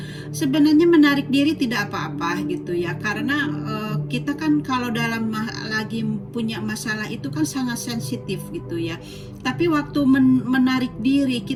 sebenarnya menarik diri tidak apa-apa gitu ya, karena kita kan kalau lagi punya masalah itu kan sangat sensitif gitu ya. Tapi waktu menarik diri,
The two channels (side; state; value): both; identical; correlation 1.00